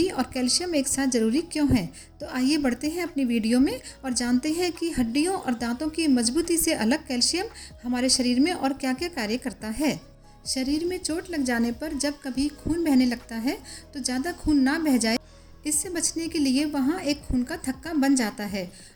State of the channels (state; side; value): identical; both; correlation 1.00